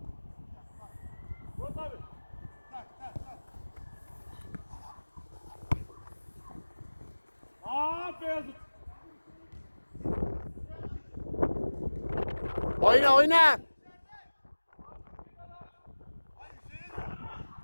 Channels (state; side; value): inverted; both; correlation -1.00